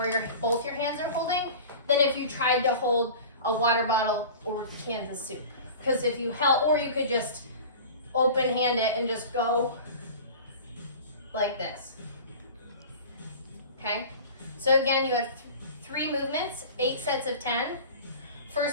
both your hands are holding, than if you tried to hold a water bottle or cans of soup. Because if you held, or you could just open hand it and just go like this. Okay? So again, you have 3 movements, 8 sets of 10.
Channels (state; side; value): inverted; both; correlation -0.37